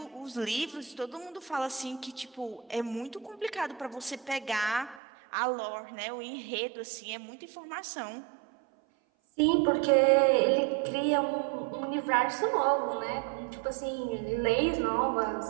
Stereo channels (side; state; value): left; drops out; at 5.0 s